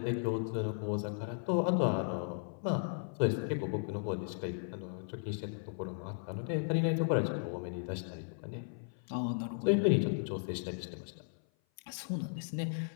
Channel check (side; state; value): right; silent; 54 dB below the other